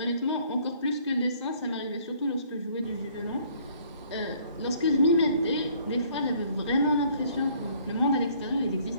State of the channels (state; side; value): inverted; both; correlation -0.60